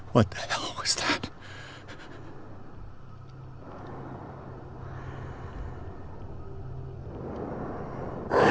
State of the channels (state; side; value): identical; both; correlation 1.00